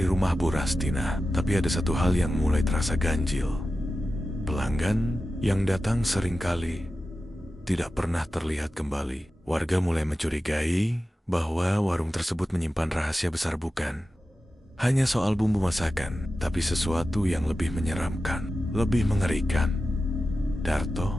rumah Bu Rastina. Tapi ada satu hal yang mulai terasa ganjil. Pelanggan yang datang seringkali tidak pernah terlihat kembali. Warga mulai mencurigai bahwa warung tersebut menyimpan rahasia besar, bukan hanya soal bumbu masakan, tapi sesuatu yang lebih menyeramkan, lebih mengerikan.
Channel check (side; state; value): both; normal; correlation 0.93